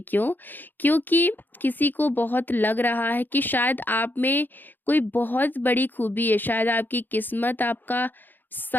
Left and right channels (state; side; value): late; right; 0.090 ms